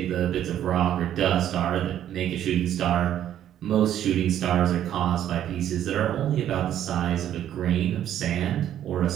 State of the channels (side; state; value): left; quieter; 11.0 dB